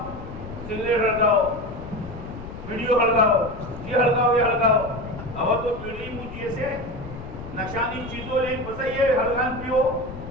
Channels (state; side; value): noise; left; rumble, 12 dB below the sound